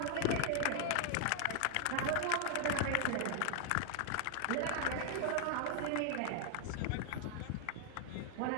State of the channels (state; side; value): different; both; correlation 0.00